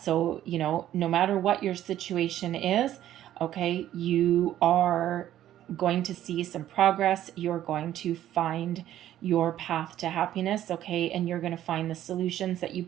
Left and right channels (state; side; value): quieter; left; 12.4 dB